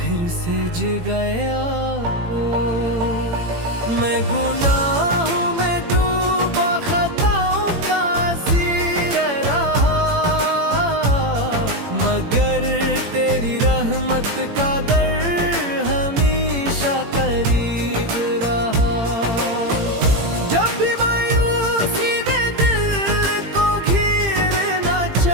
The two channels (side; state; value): left; late; 18 ms